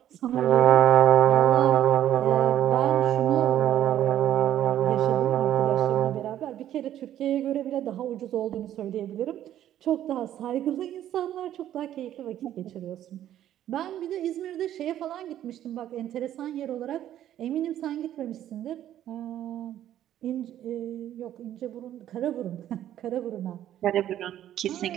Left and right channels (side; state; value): left; quieter; 11.7 dB